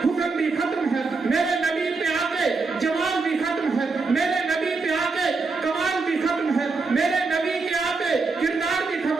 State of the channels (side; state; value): left; quieter; 4.1 dB